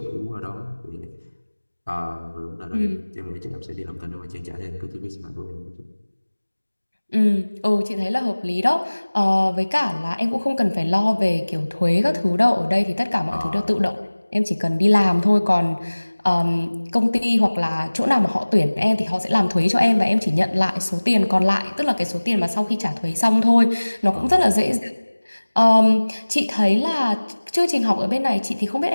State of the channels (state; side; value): inverted; both; correlation -1.00